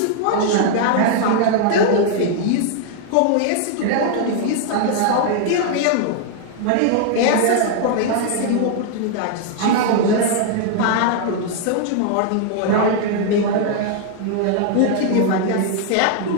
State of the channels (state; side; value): different; both; correlation 0.00